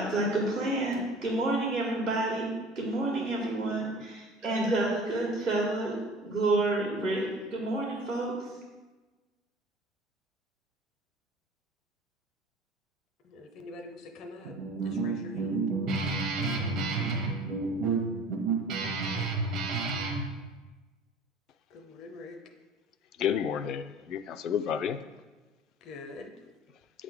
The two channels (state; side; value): normal; both; correlation 0.44